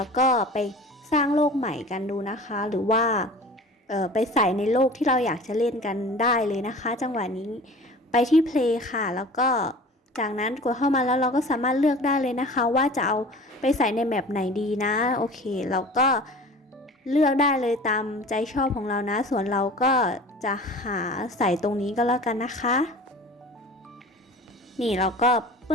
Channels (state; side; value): normal; both; correlation 0.41